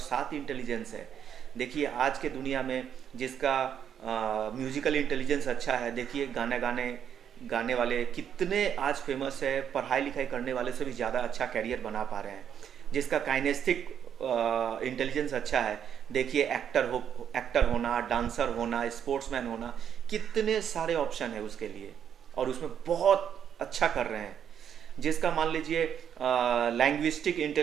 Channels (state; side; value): quieter; left; 8.7 dB